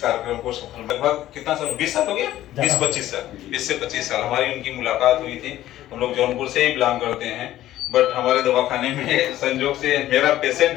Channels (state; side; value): quieter; right; 13.9 dB